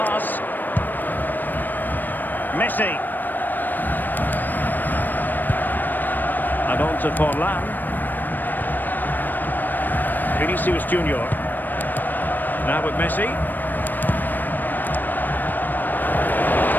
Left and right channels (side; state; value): right; late; 0.090 ms